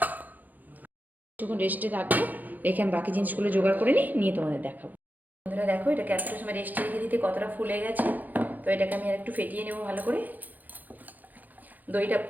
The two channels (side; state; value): left; late; 0.083 ms